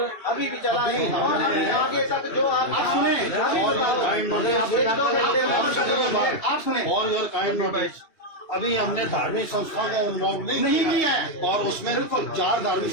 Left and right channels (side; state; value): right; late; 2.7 ms